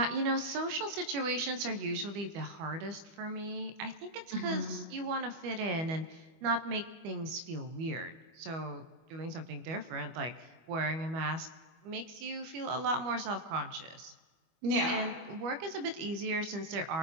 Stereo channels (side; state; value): left; late; 25 ms